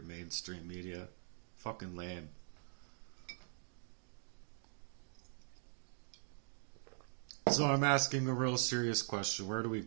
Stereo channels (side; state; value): left; silent; digital silence